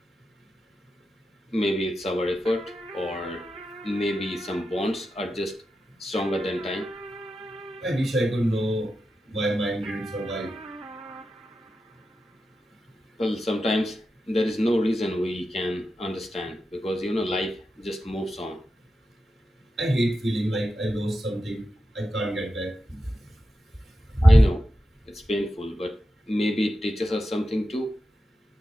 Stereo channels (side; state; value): both; normal; correlation 0.90